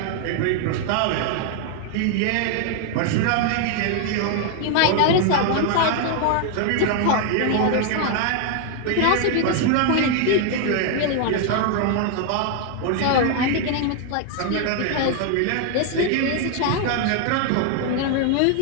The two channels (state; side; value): different; both; correlation 0.00